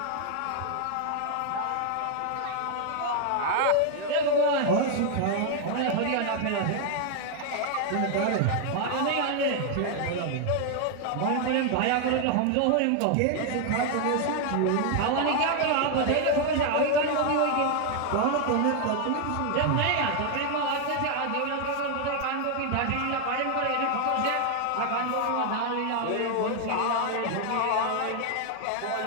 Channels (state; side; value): different; both; correlation 0.00